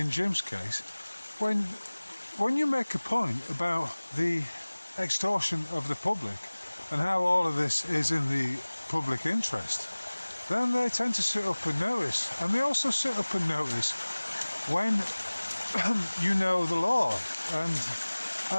Jim's case, when you make a point about the extortion of the public and how all of this is in the public interest, then they tend to sit up and notice. And they also sit up and notice when you know the law. And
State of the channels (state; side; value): inverted; both; correlation -1.00